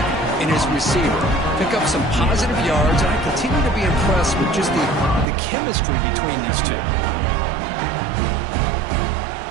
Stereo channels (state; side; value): drops out; left; at 5.2 s